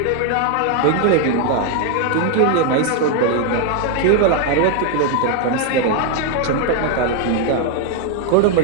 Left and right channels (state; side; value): different; both; correlation 0.00